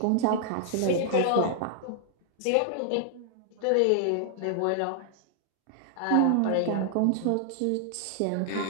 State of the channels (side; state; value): both; different; correlation -0.01